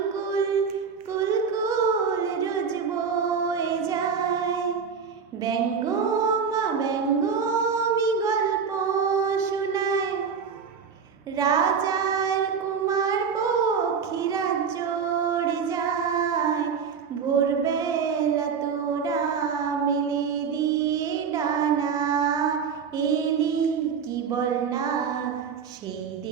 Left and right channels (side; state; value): left; quieter; 6.3 dB